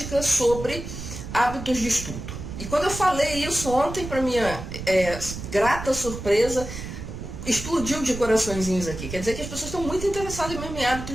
sobre hábitos de estudo. E quando eu falei isso ontem, para minha grata surpresa, explodiu de coraçõezinhos aqui. Quer dizer que as pessoas estão muito interessadas mesmo em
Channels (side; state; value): right; noise; rumble, 9 dB below the sound